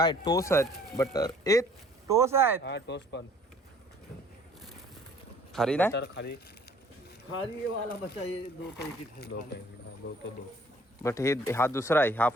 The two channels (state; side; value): normal; both; correlation 0.56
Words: टोस आहेत बटर. ए टोस आहेत. हा टोस्ट पण खारी नाही. तर खाली खारी वाला बचा ये 2 पैकी दो. बट हे हा दुसरा आहे. हा